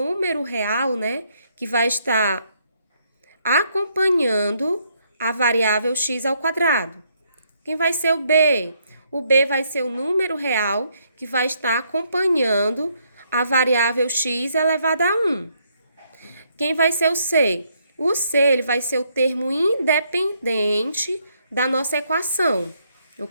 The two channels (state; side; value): inverted; both; correlation -0.72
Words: real, né? Que vai estar acompanhando a variável x ao quadrado. Quem vai ser o B? O B vai ser o número real que vai estar acompanhando a variável x elevada a 1. Quem vai ser o C? O C, ele vai ser o termo independente da nossa equação,